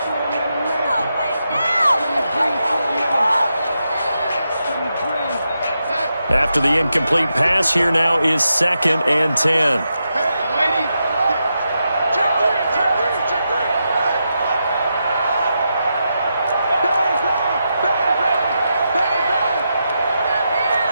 After the incomplete pass, here now is 2nd and 10.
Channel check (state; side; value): inverted; both; correlation -0.86